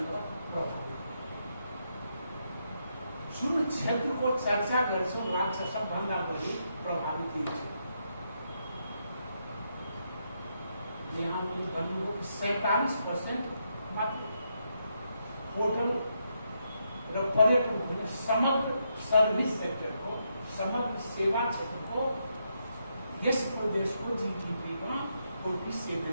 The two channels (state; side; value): inverted; both; correlation -0.80